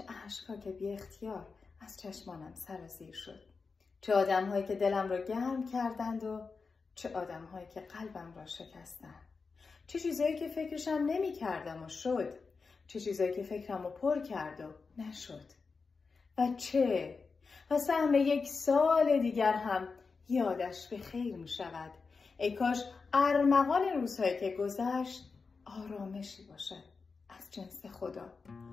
اشک‌ها که بی اختیار از چشمانم سرازیر شد. چه آدم‌هایی که دلم را گرم کردند و چه آدم‌هایی که قلبم را شکستند. چه چیزایی که فکرشم نمی‌کردم و شد. چه چیزایی که فکرم رو پر کرد و نشد. و سهم یک سال دیگر هم یادش به خیر می شود. ای کاش ارمغان روزهایی که گذشت آرامشی باشد از جنس خدا.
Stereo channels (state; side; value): quieter; right; 4.7 dB